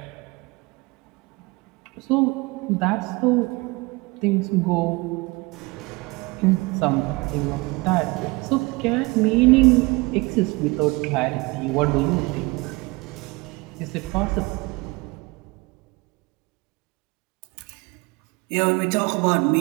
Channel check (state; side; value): quieter; left; 24.8 dB